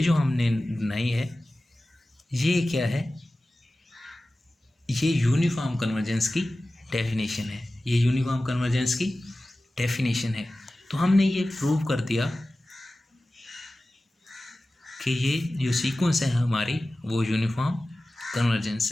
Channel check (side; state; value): both; normal; correlation 0.96